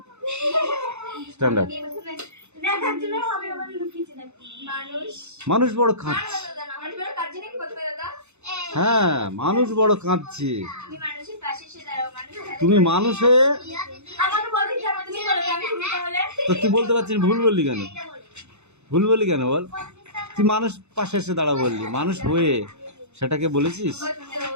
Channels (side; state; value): left; late; 0.82 ms